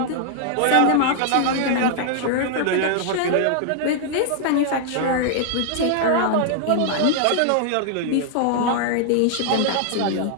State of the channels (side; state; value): both; different; correlation 0.00